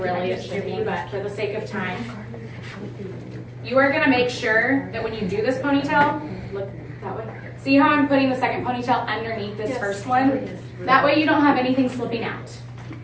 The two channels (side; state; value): both; identical; correlation 1.00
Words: it should be, but for the sake of time, you are going to make sure that when you do this ponytail, look that way. See how I'm putting the second ponytail underneath this first one? That way you don't have anything slipping out.